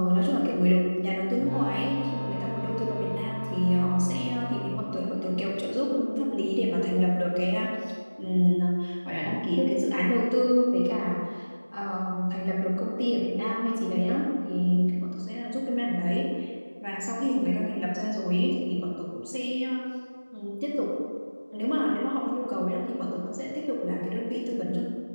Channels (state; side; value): inverted; both; correlation -1.00